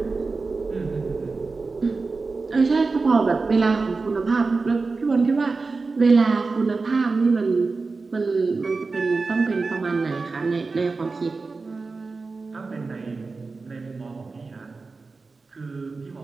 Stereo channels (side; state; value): left; quieter; 4.0 dB